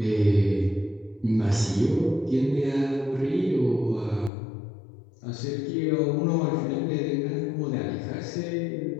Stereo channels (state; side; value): drops out; right; at 4.3 s